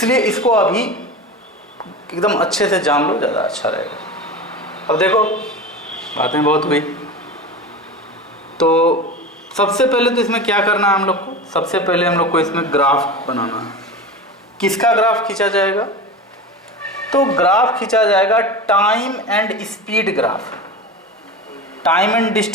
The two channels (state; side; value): normal; both; correlation 0.28